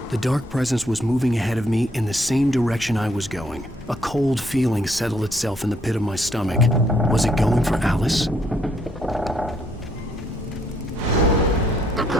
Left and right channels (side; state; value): both; normal; correlation 0.70